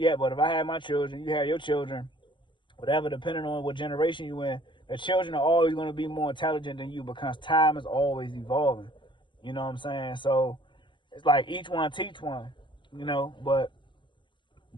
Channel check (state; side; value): late; right; 0.23 ms